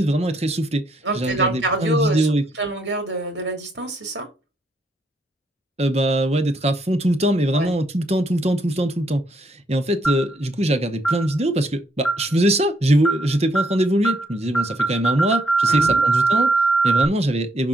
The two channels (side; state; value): both; normal; correlation 0.74